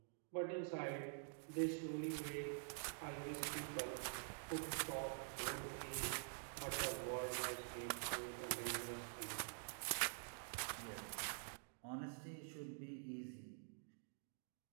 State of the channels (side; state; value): left; silent; digital silence